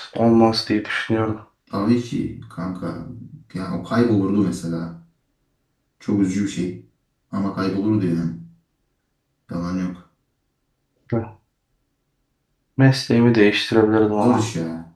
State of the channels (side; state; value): both; identical; correlation 1.00